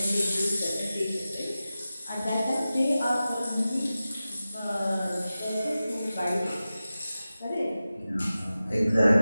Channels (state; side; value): inverted; both; correlation -0.94